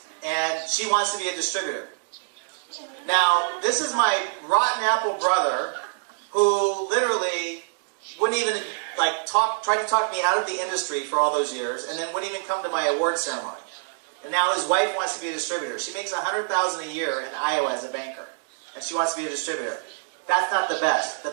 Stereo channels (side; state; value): left; silent; digital silence